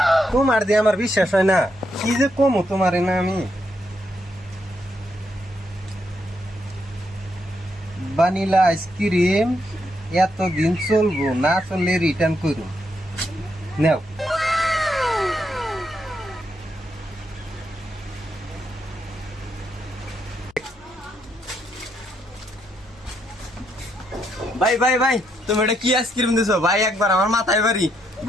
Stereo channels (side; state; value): left; noise; hum, 29 dB below the sound